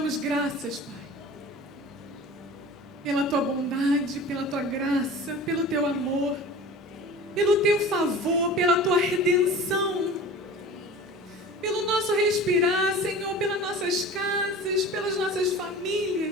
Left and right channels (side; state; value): both; normal; correlation 0.38